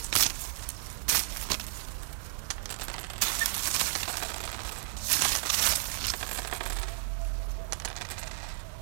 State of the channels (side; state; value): left; silent; digital silence